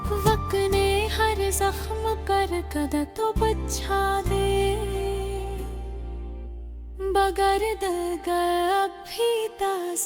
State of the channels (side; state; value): both; identical; correlation 1.00